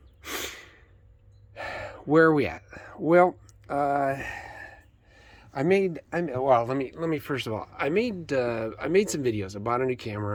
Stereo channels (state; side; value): identical; both; correlation 1.00